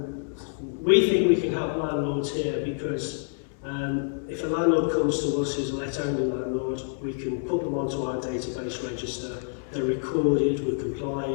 we think we can help landlords here because if a landlord comes to us who's a let-only landlord, we can put them onto our database register. They're recorded, we're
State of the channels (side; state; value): right; silent; digital silence